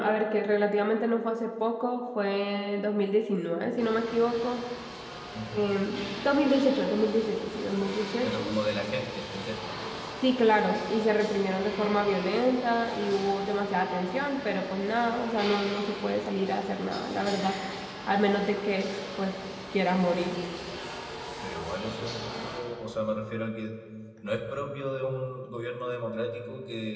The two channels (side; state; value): both; identical; correlation 1.00